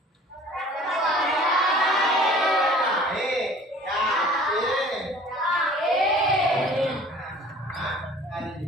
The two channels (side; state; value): both; normal; correlation 0.48